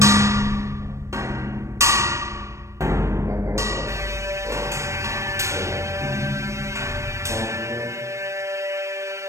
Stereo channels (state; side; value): late; left; 0.14 ms